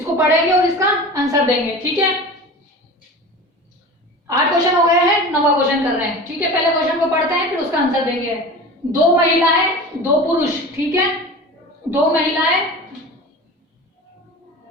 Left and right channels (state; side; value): normal; both; correlation 0.34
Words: पढ़ेंगे और इसका आंसर देंगे। ठीक है, 8 क्वेश्चन हो गए हैं, नवा क्वेश्चन कर रहे हैं। ठीक है, पहले क्वेश्चन को पढ़ते हैं फिर उसका आंसर देंगे। 2 महिलाएं 2 पुरुष। ठीक है, 2 महिलाएं,